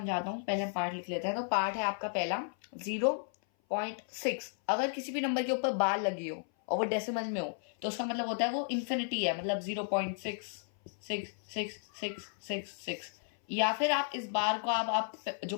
हूँ। पहले हम पार्ट लिख लेते हैं। तो पार्ट है आपका पहला 0.6। अगर किसी भी नंबर के ऊपर बार लगी हो और वो डेसिमल में हो तो उसका मतलब होता है वो इन्फिनिटी है, मतलब 0.6666666। या फिर आप इस बार को आप जो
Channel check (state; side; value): silent; right; 55 dB below the other